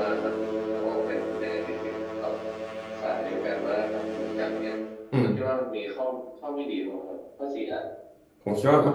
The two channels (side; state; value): both; identical; correlation 1.00